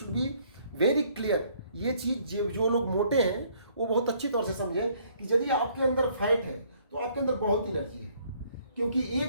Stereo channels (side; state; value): both; inverted; correlation -0.63